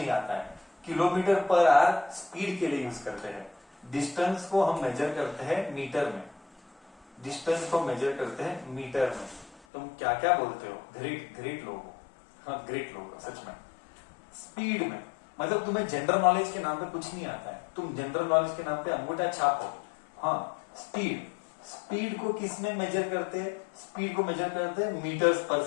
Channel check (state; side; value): drops out; right; at 9.6 s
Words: आता है। किलोमीटर पर आवर स्पीड के लिए यूज करते हैं। डिस्टेंस को हम मेजर करते हैं मीटर में। तुम क्या क्या बोलते हो? ग्रेट लोग हो, हाँ ग्रेट लोग हो सच में। स्पीड में मतलब तुम्हें जनरल नॉलेज के नाम पे कुछ नहीं आता है, तुम जनरल नॉलेज के नाम पे अंगूठा छाप हो। हाँ, स्पीड को किस में मेजर करते हैं? स्पीड को मेजर करते हैं मीटर्स पर